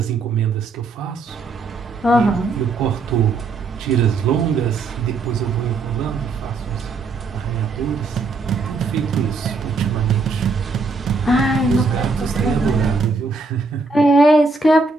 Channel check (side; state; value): left; quieter; 3.8 dB